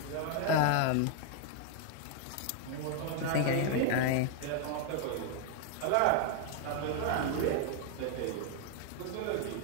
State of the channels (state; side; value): different; both; correlation 0.00